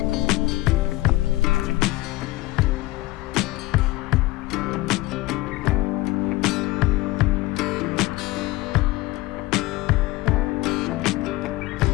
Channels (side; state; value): right; quieter; 19.3 dB